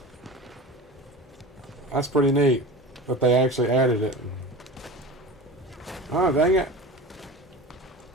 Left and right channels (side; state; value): both; normal; correlation 0.33